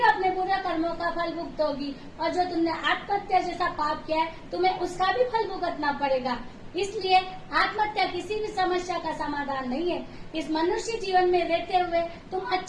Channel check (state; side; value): identical; both; correlation 1.00